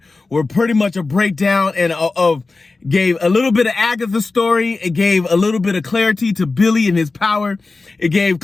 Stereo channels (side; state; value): right; quieter; 3.7 dB